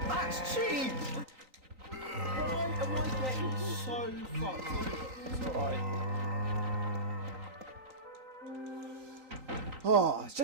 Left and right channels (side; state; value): left; late; 3.9 ms